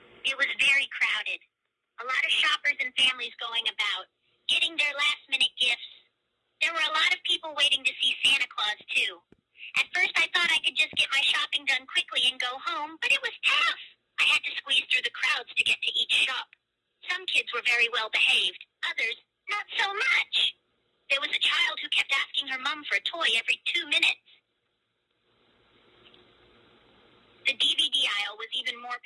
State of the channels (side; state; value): both; identical; correlation 1.00